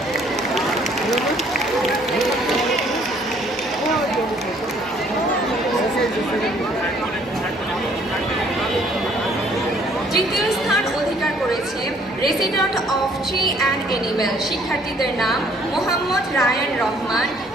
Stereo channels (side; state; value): both; normal; correlation 0.61